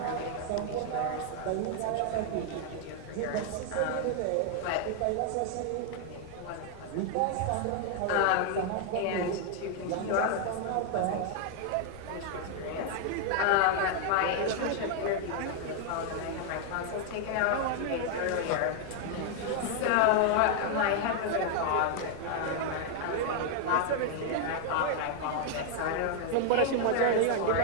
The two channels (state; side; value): different; both; correlation 0.00